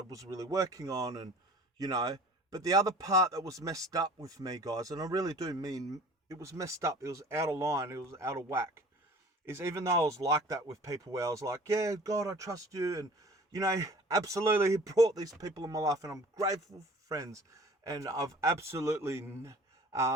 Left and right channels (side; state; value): both; normal; correlation 0.46